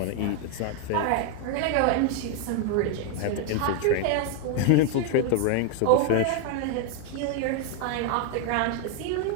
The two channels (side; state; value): both; different; correlation 0.01